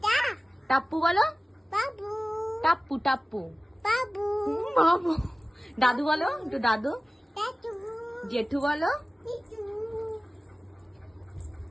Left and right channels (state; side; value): normal; both; correlation 0.97